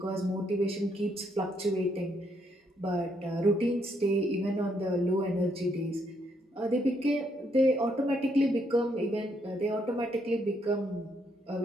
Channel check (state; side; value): normal; both; correlation 0.74